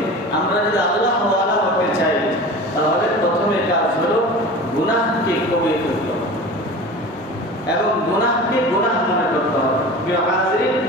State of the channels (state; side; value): normal; both; correlation 0.35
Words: আমরা যদি আল্লাহ ওয়ালা হতে চাই, তাহলে প্রথমে কাজ হলো গুনাহকে কমিয়ে ফেলতে হবে এবং গুনাহকে গুনাহ মনে করতে হবে। প্রিয় হাজিরিন,